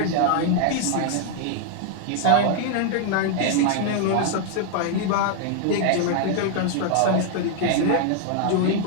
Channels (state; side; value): different; both; correlation 0.00